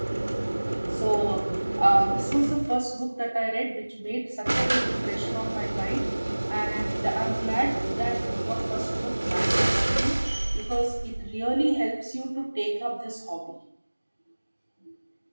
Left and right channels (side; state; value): both; inverted; correlation -1.00